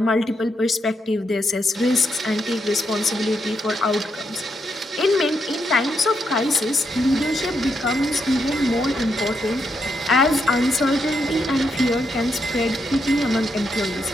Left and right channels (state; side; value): normal; both; correlation 0.80